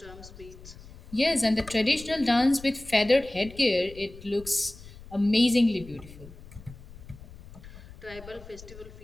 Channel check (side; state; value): left; noise; rumble, 18 dB below the sound